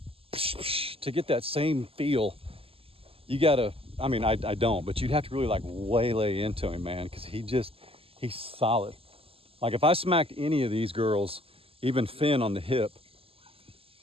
get that same feel, you gotta, I mean, I don't, but you'd have to really like waylay into him, man, because he's solid. Like if I smacked any of these girls, even Finn on the hip,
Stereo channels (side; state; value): left; late; 0.27 ms